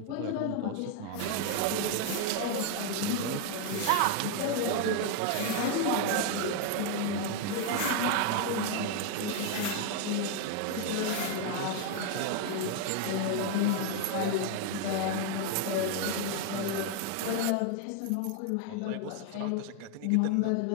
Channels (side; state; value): both; different; correlation 0.01